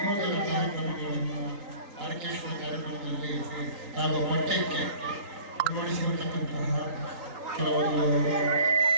ಕಾರ್ಯಕ್ರಮಗಳನ್ನು ಆರ್ಕೆಸ್ಟ್ರಾ ಕಾರ್ಯಕ್ರಮದಲ್ಲಿ ಹಾಗೂ ಪಠ್ಯಕ್ಕೆ ಅಳವಡಿಸಿರತಕ್ಕಂತಹ ಕೆಲವೊಂದು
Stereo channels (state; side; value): late; left; 3.9 ms